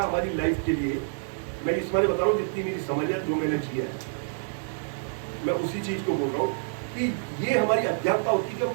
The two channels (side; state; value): left; silent; digital silence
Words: हमारी लाइफ के लिए। मैं इस बारे बता रहा हूँ, जितनी मेरी समझ है, जो मैंने किया है, मैं उसी चीज को बोल रहा हूँ कि ये हमारी अज्ञानता होती है कि हम